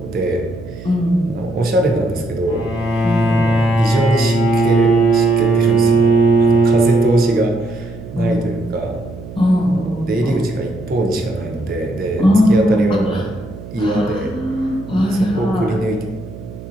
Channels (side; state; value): right; noise; hum, 14 dB below the sound